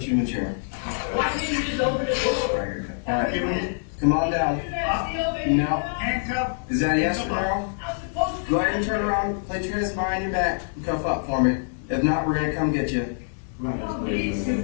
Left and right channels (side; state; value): right; silent; digital silence